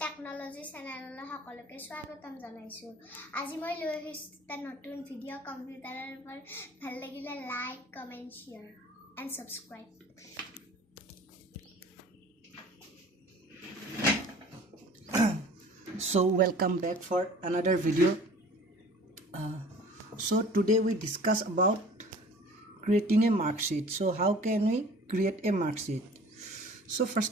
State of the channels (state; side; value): normal; both; correlation 0.46